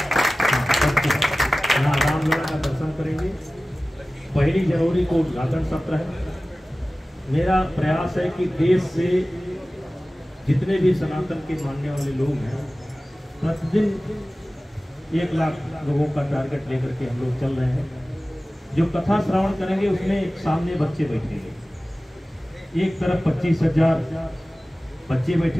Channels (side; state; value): both; normal; correlation 0.97